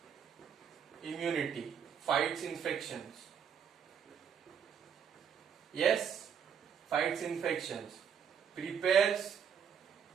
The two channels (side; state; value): left; quieter; 7.7 dB